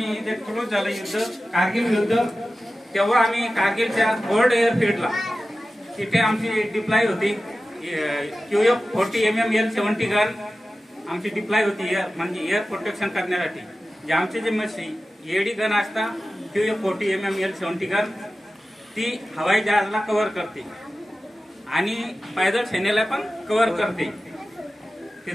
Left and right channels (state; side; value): normal; both; correlation 0.95